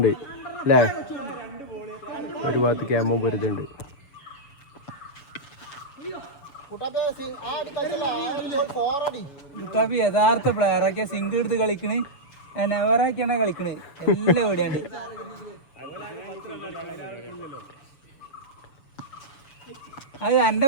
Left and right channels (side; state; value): right; late; 7.1 ms